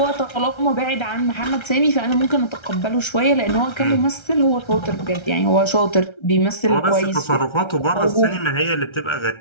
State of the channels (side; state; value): right; late; 1.3 ms